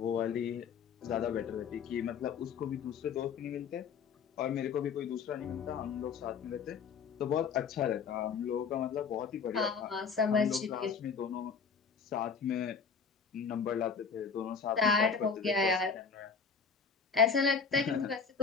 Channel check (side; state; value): right; quieter; 5.9 dB